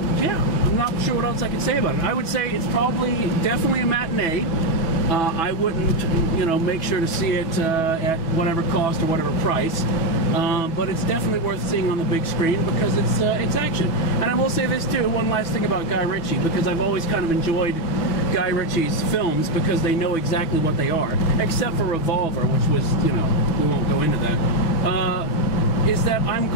yeah, I'm not sure what else I can say about it. I would say it's definitely a matinee. I wouldn't, you know, make sure to see it at whatever cost or whatever price. But it's definitely worth seeing on the big screen because it's action. And I will say this too, one last thing about Guy Ritchie, because I've always kind of enjoyed Guy Ritchie's films because they know exactly what they are, except for Revolver, which was, you know, we won't go into that, is that I'm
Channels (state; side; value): late; right; 6.1 ms